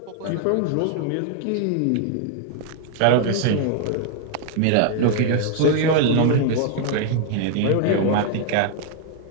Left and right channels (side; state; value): both; different; correlation 0.00